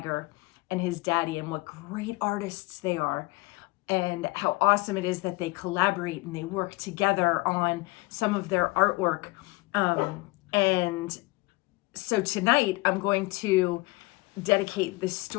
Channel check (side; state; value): right; quieter; 23.5 dB